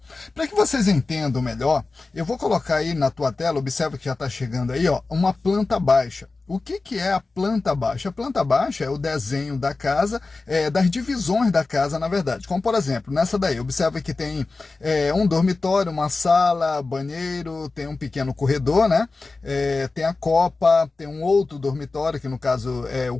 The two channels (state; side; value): quieter; right; 3.7 dB